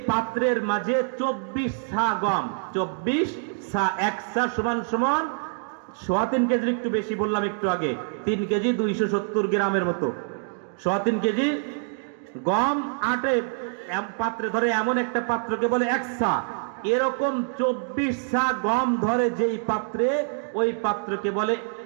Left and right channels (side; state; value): left; silent; 61 dB below the other